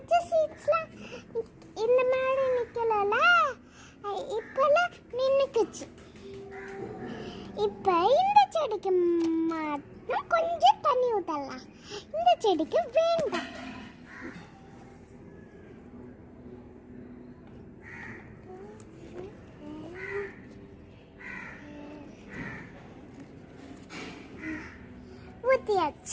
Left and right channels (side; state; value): both; identical; correlation 1.00